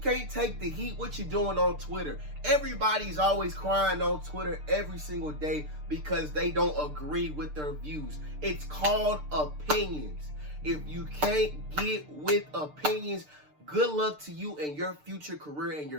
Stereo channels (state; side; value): late; left; 6.7 ms